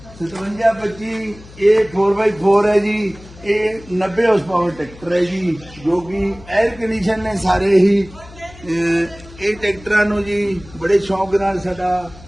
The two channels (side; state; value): left; noise; hum, 20 dB below the sound